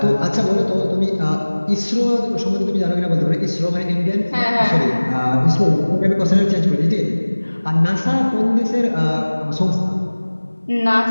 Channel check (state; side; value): inverted; both; correlation -1.00